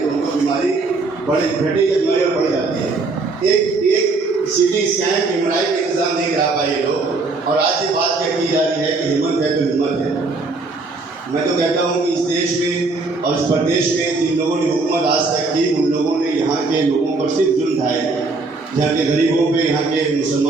तो उनको बीमारी घटे या बीमारी और बढ़ जाती है। एक सीटी स्कैन एमआरआई का इंतजाम नहीं करा पाए ये लोग, और आज ये बात क्या की जा रही है कि हिम्मत है तो हिम्मत है। मैं तो कहता हूँ कि इस देश में और इस प्रदेश में जिन लोगों ने हुकूमत आज तक की, उन लोगों ने यहाँ के लोगों पर सिर्फ जुल्म ढाए, यहाँ के गरीबों पे, यहाँ के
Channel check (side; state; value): left; quieter; 3.7 dB